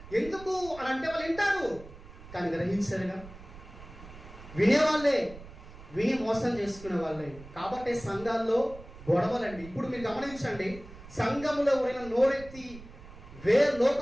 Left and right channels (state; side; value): noise; right; rumble, 17 dB below the sound